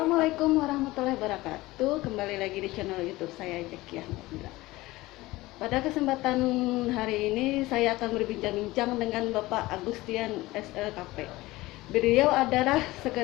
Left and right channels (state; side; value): quieter; right; 19.2 dB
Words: warahmatullahi wabarakatuh. Kembali lagi di channel YouTube saya Jekiah. Pada kesempatan hari ini saya akan berbincang-bincang dengan Bapak Agustian SLKP. Beliau adalah